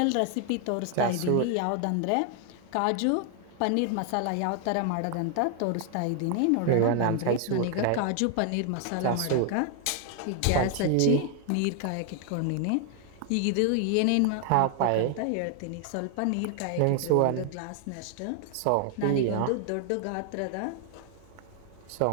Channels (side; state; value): both; different; correlation 0.00